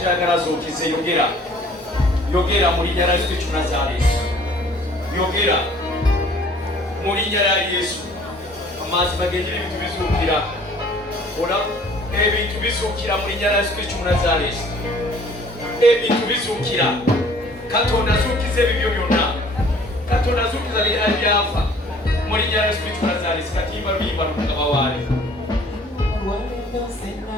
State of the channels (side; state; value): both; normal; correlation 0.54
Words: zookize yogera mu linnya lya Yesu Kristo Nazaaleesi yogera mu linnya lya Yesu amazima g'enjiri ebintu bizuukira ebintu bizuukira mu linnya lya Yesu Kristo Nazaaleesi ebintu bizuukira Katonda azuukiza ebibyo byonna Katonda azuukiza ebyafa mu linnya lya Yesu Kristo Nazaaleesi katimba luyimba lukagaba waali